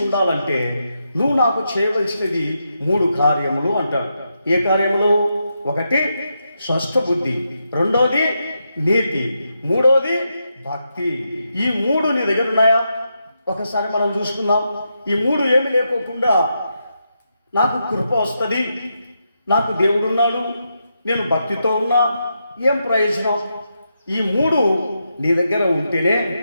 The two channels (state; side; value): inverted; both; correlation -0.84